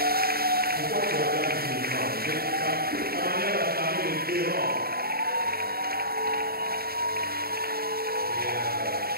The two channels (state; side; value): late; left; 0.44 ms